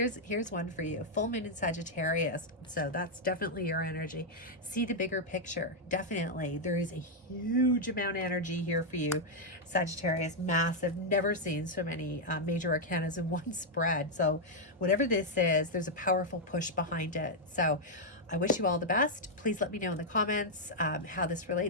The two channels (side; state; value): both; normal; correlation -0.02